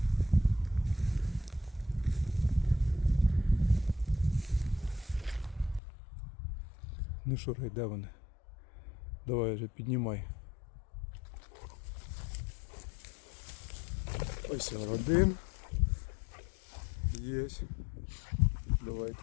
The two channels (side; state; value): right; drops out; at 5.8 s